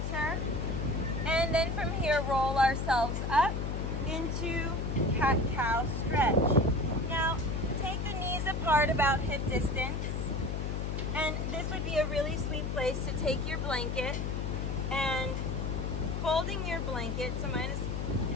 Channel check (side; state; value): left; noise; hum, 2 dB below the sound